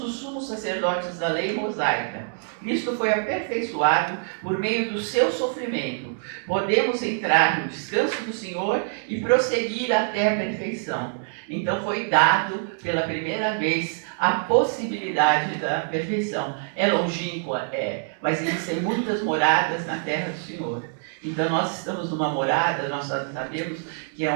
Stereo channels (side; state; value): left; silent; digital silence